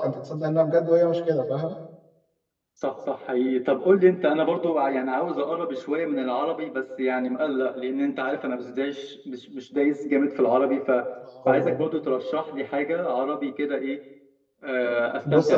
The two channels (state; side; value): identical; both; correlation 1.00